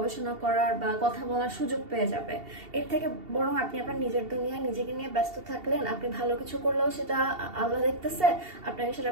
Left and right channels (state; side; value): late; left; 2.7 ms